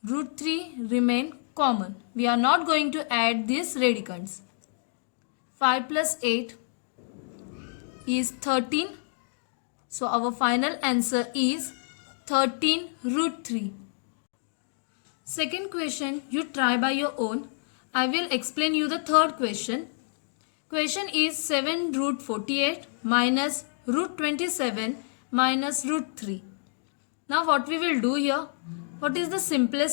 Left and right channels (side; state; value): right; silent; digital silence